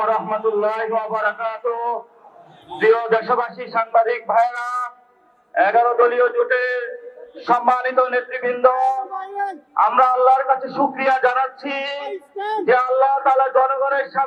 রাহমাতুল্লাহি ওয়া বারাকাতুহু। প্রিয় দেশবাসী, সাংবাদিক ভাইরা, 11 দলীয় জোটের সম্মানিত নেতৃবৃন্দ, আমরা আল্লাহর কাছে শুকরিয়া জানাচ্ছি যে আল্লাহ তাআলা জনগণের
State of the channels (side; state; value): both; identical; correlation 1.00